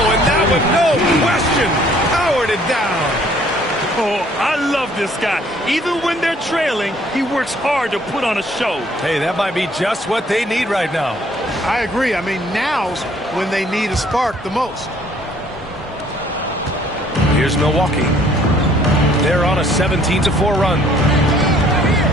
and that one, no question, powered it down. Oh, I love this guy. Even when they're trailing, he works hard to put on a show. Hey, that might be just what they need right now. I agree. I mean, now's when they need a spark the most. Here's Milwaukee. They're on a 17-4 run.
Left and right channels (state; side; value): normal; both; correlation 0.60